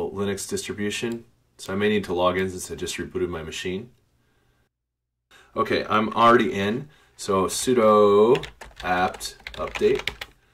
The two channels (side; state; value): both; identical; correlation 1.00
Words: Linux distribution. So I may need to log in since I just rebooted my machine. Okay, I'm already in. So sudo apt update.